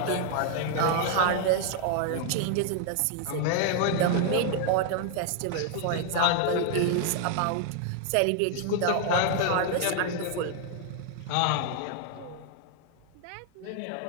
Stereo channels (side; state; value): both; different; correlation 0.00